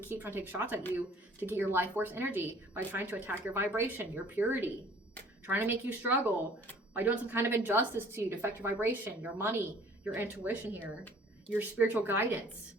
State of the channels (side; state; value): both; normal; correlation 0.53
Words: keep trying to take shots at you to get your life force energy by trying to attack your vibration, your purity, trying to make you struggle by doing some kind of injustice to you to affect your vibration, your money, your intuition here, your spiritual guidance.